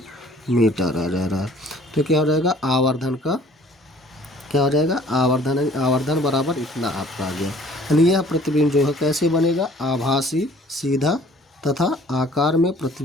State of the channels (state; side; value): normal; both; correlation 0.54